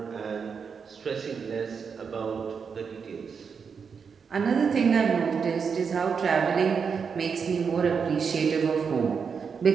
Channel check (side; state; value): left; quieter; 6.0 dB